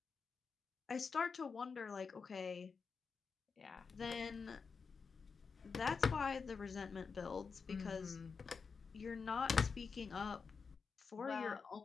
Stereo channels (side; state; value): right; quieter; 5.3 dB